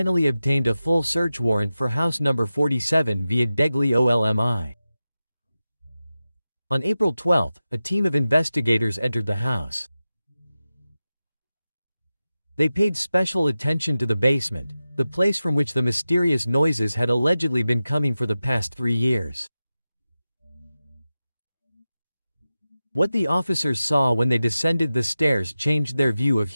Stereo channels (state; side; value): inverted; both; correlation -0.94